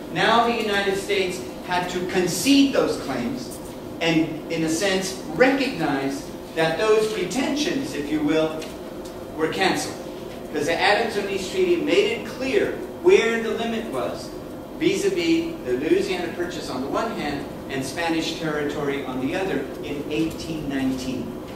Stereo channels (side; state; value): both; identical; correlation 1.00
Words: now the United States had to concede those claims and, in a sense, recognize that those pretensions, if you will, were canceled. Because the Adams-Onis Treaty made it clear where the limit was vis-a-vis the Louisiana Purchase on the one hand and Spanish territory on the other in 1819.